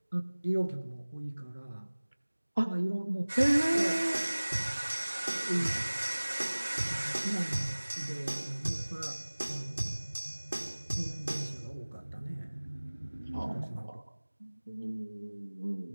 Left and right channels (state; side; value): inverted; both; correlation -1.00